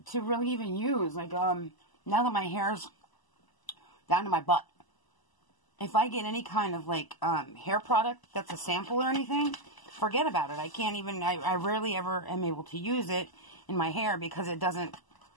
to really even use. Like, now that my hair's down to my butt, if I get any kind of, like, hair product that's a sample or anything, forget about it. I can't even, I rarely ever am able to use it in my hair because there's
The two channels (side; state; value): right; late; 1.0 ms